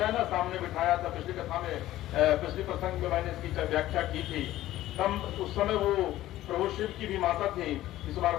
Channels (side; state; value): right; quieter; 14.7 dB